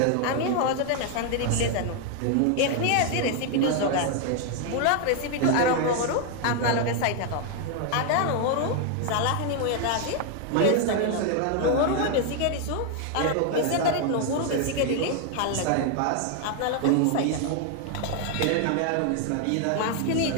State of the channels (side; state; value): both; different; correlation 0.00